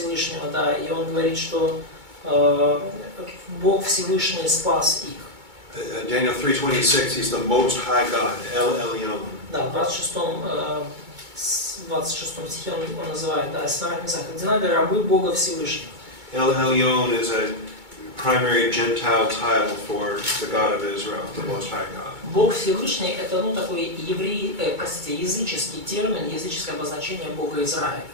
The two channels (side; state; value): left; late; 2.2 ms